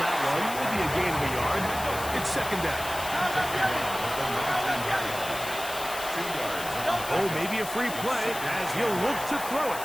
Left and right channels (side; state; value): left; noise; hiss, 10 dB below the sound